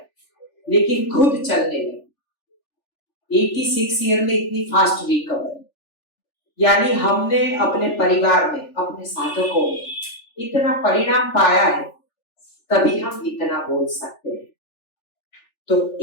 लेकिन खुद चलने लगी। 86 ईयर में इतनी फास्ट रिकवरी, यानी हमने अपने परिवार में, अपने साधकों में इतना परिणाम पाया है, तभी हम इतना बोल सकते हैं। तो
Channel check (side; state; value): right; late; 3.4 ms